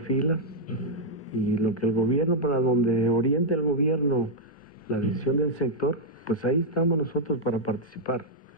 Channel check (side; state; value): both; normal; correlation -0.05